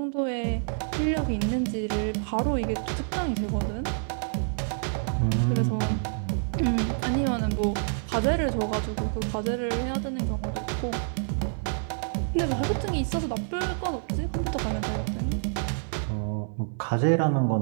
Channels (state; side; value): silent; left; 60 dB below the other